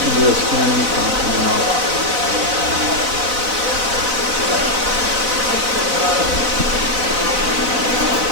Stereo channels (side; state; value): left; late; 4.0 ms